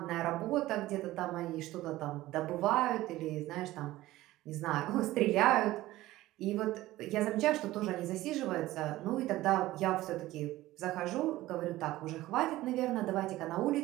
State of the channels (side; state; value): left; quieter; 16.7 dB